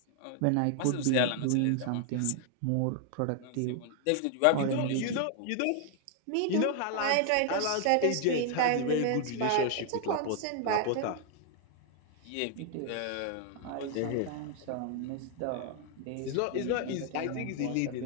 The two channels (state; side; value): different; both; correlation 0.00